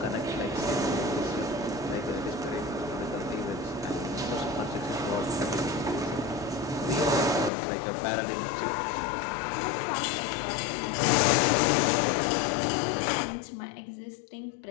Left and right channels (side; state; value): right; drops out; at 7.5 s